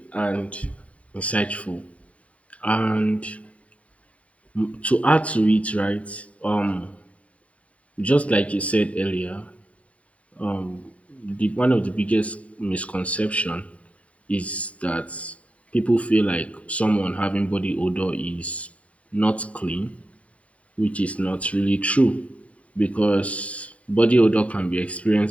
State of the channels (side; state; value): right; late; 0.066 ms